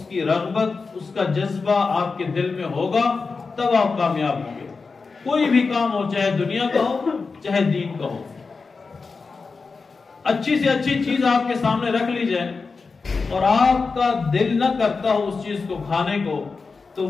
کی رغبت، اس کا جذبہ آپ کے دل میں ہوگا، تب آپ کامیاب ہوں گے۔ کوئی بھی کام ہو، چاہے دنیا کا ہو چاہے دین کا ہو، اچھی سے اچھی چیز آپ کے سامنے رکھ لی جائے اور آپ کا دل نہ کرتا ہو اس چیز کو کھانے کو، تو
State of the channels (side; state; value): right; quieter; 4.5 dB